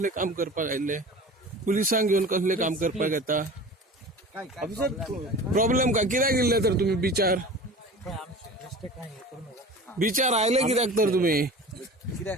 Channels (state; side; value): normal; both; correlation 0.37